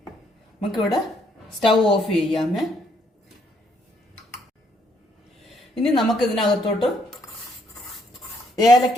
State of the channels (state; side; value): normal; both; correlation 0.70